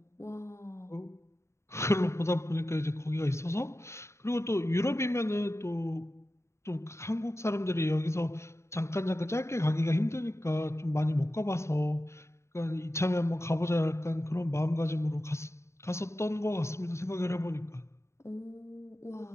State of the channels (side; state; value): right; late; 0.13 ms